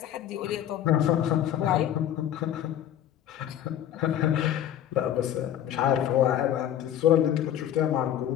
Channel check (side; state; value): right; quieter; 11.0 dB